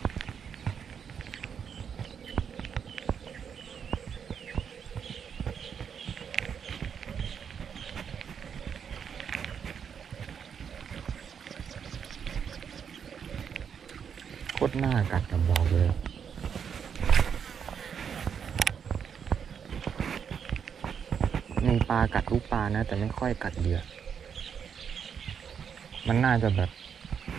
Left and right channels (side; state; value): left; quieter; 7.3 dB